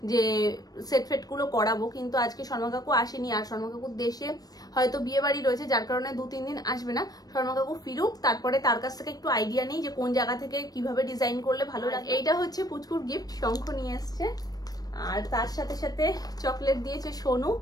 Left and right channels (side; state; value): right; late; 0.19 ms